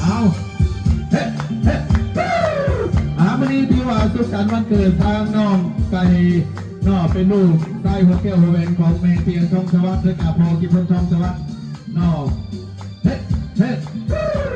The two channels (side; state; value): both; identical; correlation 1.00